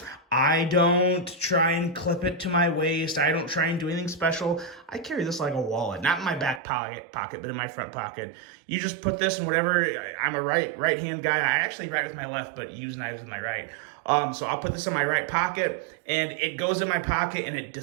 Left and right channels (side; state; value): left; drops out; at 6.6 s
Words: I don't try and clip it to my waist. I don't try and do anything special. I carry this like a wallet, not in my back pocket, but in my front pocket. You just put this in whatever. I'm a right hand guy. I actually write with my left, but use knives with my right. So I'll put this in my right pocket, and it goes in my pocket, and it